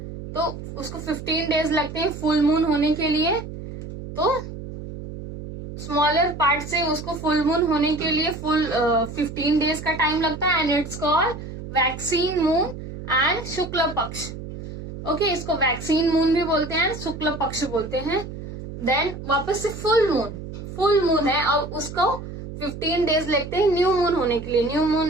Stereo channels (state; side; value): noise; right; hum, 10 dB below the sound